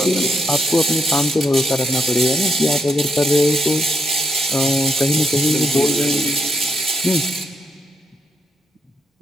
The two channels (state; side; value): normal; both; correlation 0.79